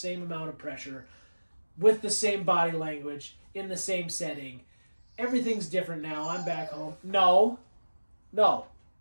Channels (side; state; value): both; inverted; correlation -1.00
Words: amount of pressure with the same body language in the same setting. Everything's different now. I'm back home. No.